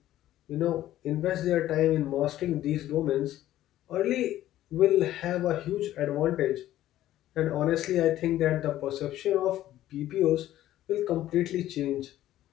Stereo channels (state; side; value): quieter; right; 13.6 dB